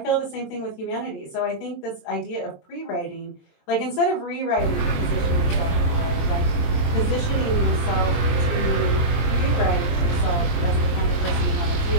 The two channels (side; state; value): right; late; 22 ms